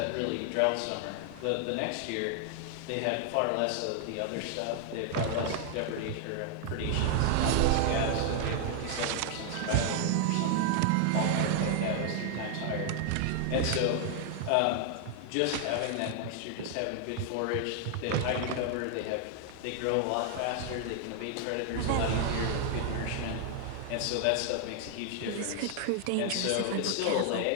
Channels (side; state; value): both; different; correlation 0.00